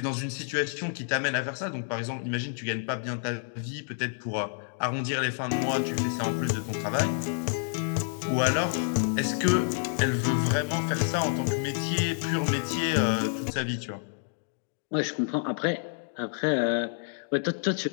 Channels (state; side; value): silent; right; digital silence